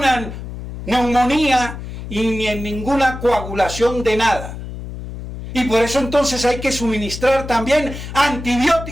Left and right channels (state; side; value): noise; left; hum, 10 dB below the sound